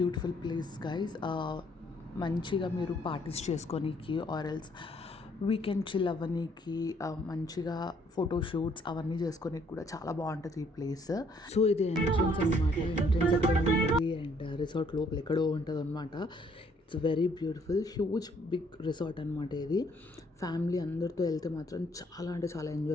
ప్లేస్ గైస్. మంచిగా మీరు పార్టీస్ చేసుకోనీకి ఆర్ ఎల్స్ వీకెండ్ చిల్ అవ్వనీకి, మంచిగా ఫోటోషూట్స్ అవన్నీ చేసుకోనీకి కూడా చాలా బాగుంటుంది ఈ ప్లేస్. సో ఇది ఎంట్రన్స్ అనమాట. ఎంట్రన్స్ ఎక్కడ ఉంటుంది అండ్ రిసార్ట్ లోపల ఎక్కడో ఉంటుంది అనమాట. It's very beautiful, huge big resort అనమాట ఇది. ఫ్యామిలీ అందరితో వెళ్తే మాత్రం చాలా అంటే చాలా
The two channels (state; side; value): normal; both; correlation 0.66